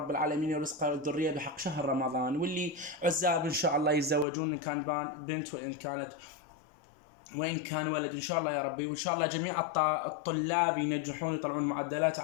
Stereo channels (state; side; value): drops out; right; at 4.2 s